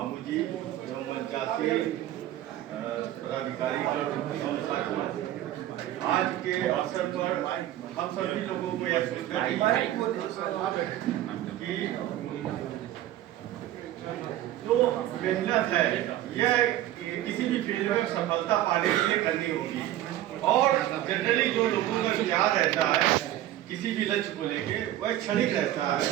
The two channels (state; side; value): quieter; left; 13.5 dB